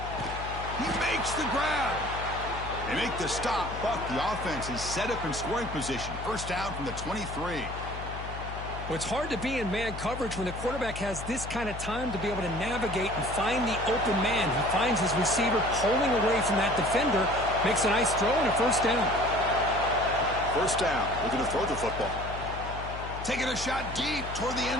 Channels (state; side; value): noise; left; hum, 9 dB below the sound